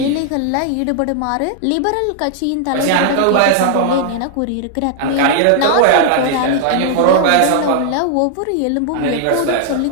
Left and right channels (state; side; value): different; both; correlation 0.00